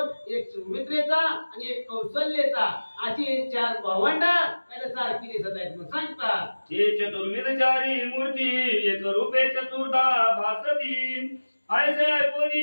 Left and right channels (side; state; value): both; inverted; correlation -1.00